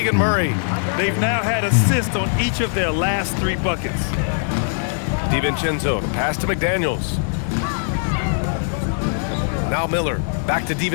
Murray. They've now had assists on each of their last 3 buckets. DiVincenzo, pass to McDaniels. Now Miller, back to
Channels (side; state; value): right; silent; digital silence